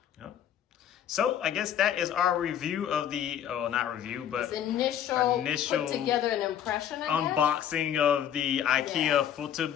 Yep. So I guess that is our review of the, not review, but initial put together an impression, I guess. Unboxing of the IKEA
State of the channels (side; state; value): right; quieter; 9.7 dB